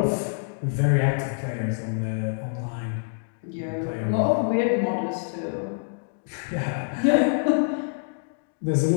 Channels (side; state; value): right; silent; digital silence